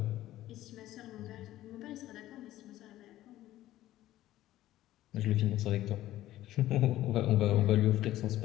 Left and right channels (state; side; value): quieter; right; 14.5 dB